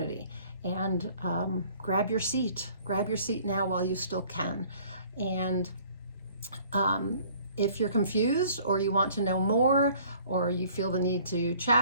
and grab your seat. Grab your seat now while you still can. And if you're confused, or you want to know more, or you feel the need to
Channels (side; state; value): both; inverted; correlation -0.55